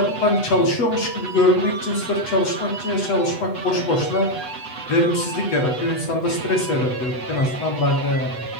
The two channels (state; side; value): late; right; 8.0 ms